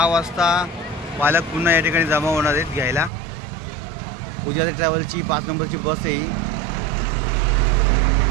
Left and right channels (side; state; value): left; drops out; at 3.1 s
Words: वाजता पालक पुन्हा या ठिकाणी जमा होणार आहेत घ्यायला। पुजारी ट्रॅव्हलची 5 नंबरची बस आहे ही।